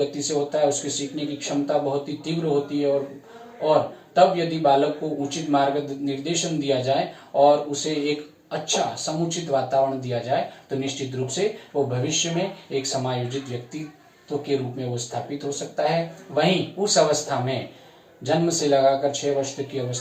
से होता है, उसके सीखने की क्षमता बहुत ही तीव्र होती है और तब यदि बालक को उचित मार्ग निर्देशन दिया जाए और उसे एक अच्छा समुचित वातावरण दिया जाए तो निश्चित रूप से वो भविष्य में एक समायोजित व्यक्तित्व के रूप में वो स्थापित हो सकता है। वहीं उस अवस्था में जन्म से लगाकर 6 वर्ष तक की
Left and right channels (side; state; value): both; identical; correlation 1.00